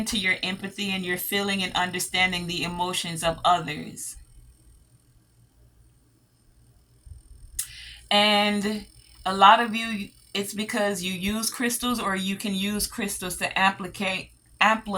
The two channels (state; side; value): identical; both; correlation 1.00